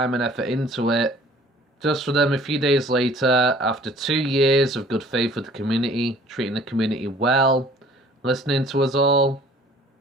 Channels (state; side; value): normal; both; correlation 0.53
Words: and effort into it. Just for them, a few days later, after 2 years of good faith with the community, treating the community well, listening to us all,